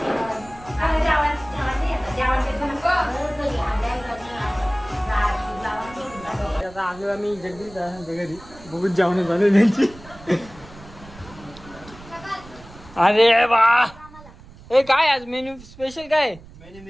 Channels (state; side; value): noise; right; rumble, 20 dB below the sound